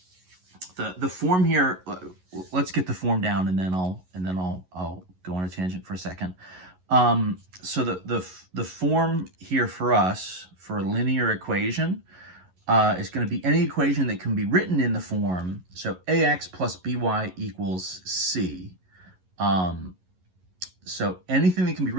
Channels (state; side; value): late; left; 11 ms